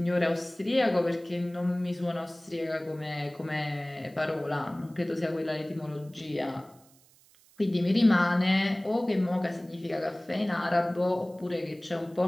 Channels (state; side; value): noise; right; hiss, 29 dB below the sound